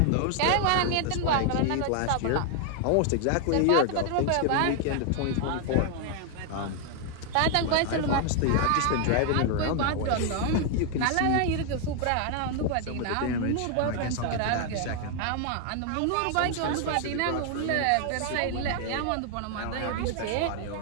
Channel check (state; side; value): different; both; correlation 0.00